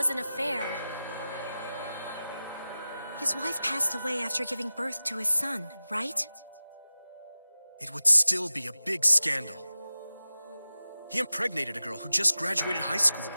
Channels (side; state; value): both; inverted; correlation -0.95